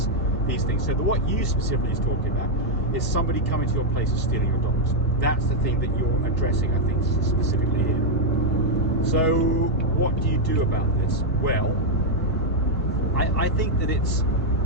things. So what you specifically is talking about is somebody coming to your place and stealing your dogs. That's the thing that you're addressing, I think, specifically here. So what do you do about this? Well, I think that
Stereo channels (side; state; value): both; normal; correlation -0.01